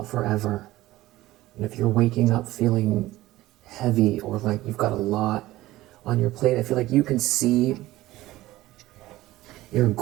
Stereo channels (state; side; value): quieter; left; 16.8 dB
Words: forever. And if you're waking up feeling heavy or like you've got a lot on your plate, I feel like you can see your